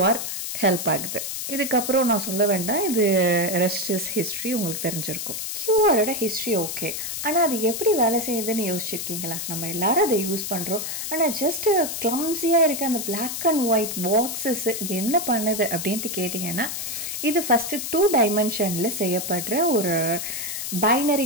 ஹெல்ப் ஆகுது. இதுக்கப்புறம் நான் சொல்ல வேண்டாம், இது ரெஸ்ட் இஸ் ஹிஸ்ட்ரி, உங்களுக்கு தெரிஞ்சிருக்கும். QRோட ஹிஸ்ட்ரி ஓகே, ஆனால் அது எப்படி வேலை செய்யுதுன்னு யோசிச்சிருக்கீங்களா? நம்ம எல்லாரும் அதை யூஸ் பண்ணுறோம், ஆனால் ஜஸ்ட்டு கிளம்ஸியாக இருக்க அந்த பிளாக் அண்ட் ஒயிட் பாக்ஸஸ் என்ன பண்ணுது அப்படின்ட்டு கேட்டிங்கன்னா, இது ஃபஸ்ட்டு 2 டைமென்ஷனில் செய்யப்படுற ஒரு பைனரி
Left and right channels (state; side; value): noise; left; hiss, 4 dB below the sound